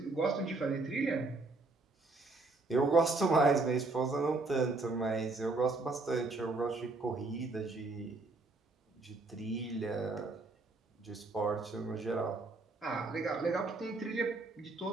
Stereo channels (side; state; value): left; quieter; 3.4 dB